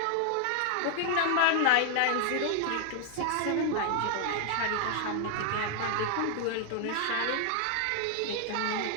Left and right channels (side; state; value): both; different; correlation 0.00